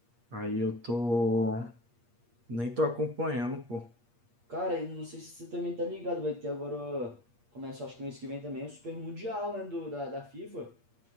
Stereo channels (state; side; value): late; left; 8.5 ms